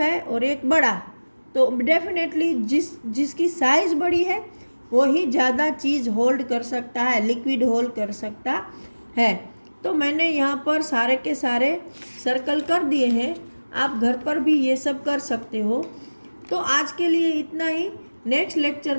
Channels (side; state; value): both; inverted; correlation -1.00